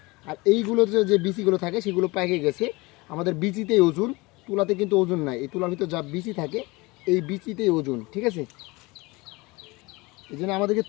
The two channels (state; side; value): quieter; right; 23.8 dB